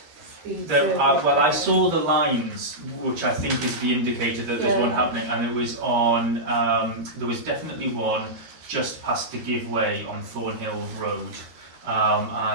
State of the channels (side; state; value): left; late; 13 ms